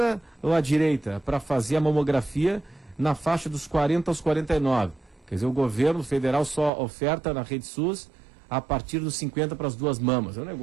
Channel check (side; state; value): left; drops out; at 6.7 s